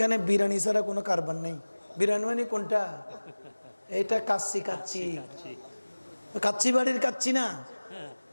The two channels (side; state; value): both; inverted; correlation -1.00